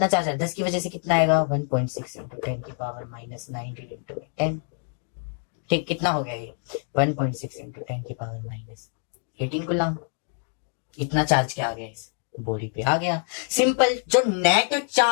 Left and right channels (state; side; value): silent; right; 59 dB below the other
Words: चार्ज है, 10 की वजह से कितना आएगा? 1.6 इंटू 10 की पावर माइनस 19 इंटू 10, ठीक, कितना हो गया ये? 1.6 इंटू 10 की पावर माइनस 18 कूलम। इतना चार्ज क्या आ गया इस बॉडी पे? आ गया। सिंपल, जो नेट